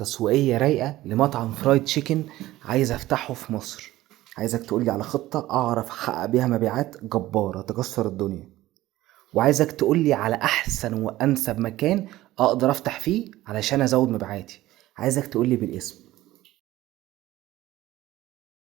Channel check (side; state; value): left; quieter; 16.2 dB